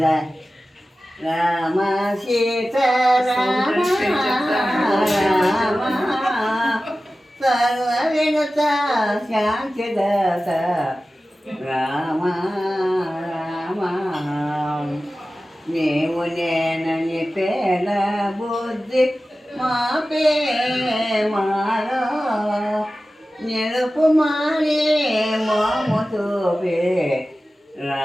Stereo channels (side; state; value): both; normal; correlation 0.95